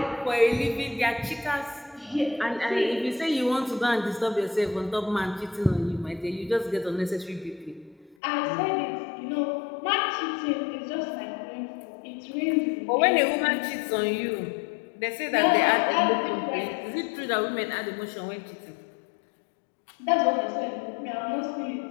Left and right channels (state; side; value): drops out; right; at 8.2 s